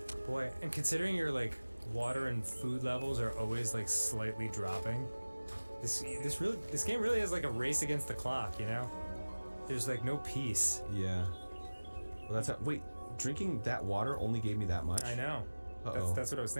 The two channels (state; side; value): inverted; both; correlation -1.00